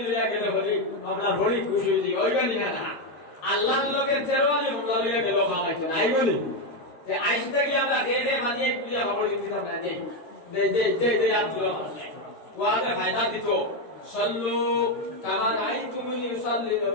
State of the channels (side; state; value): right; late; 13 ms